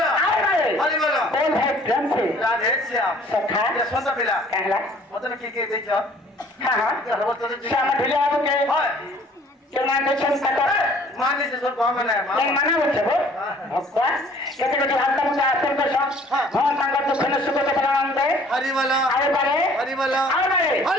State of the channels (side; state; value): both; normal; correlation 0.55